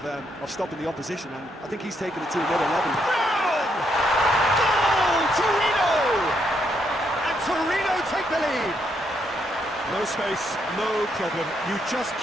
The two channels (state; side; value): normal; both; correlation 0.76